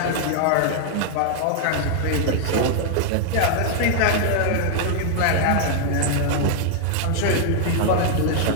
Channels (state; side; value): different; both; correlation 0.00